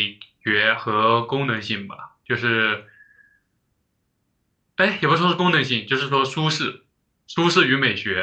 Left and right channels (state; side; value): identical; both; correlation 1.00